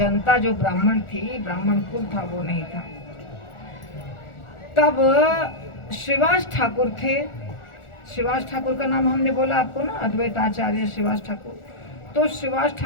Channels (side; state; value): right; late; 1.4 ms